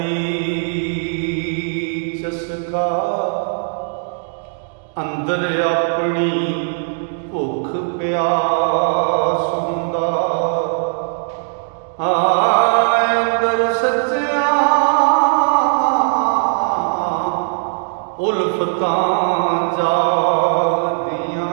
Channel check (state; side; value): silent; left; digital silence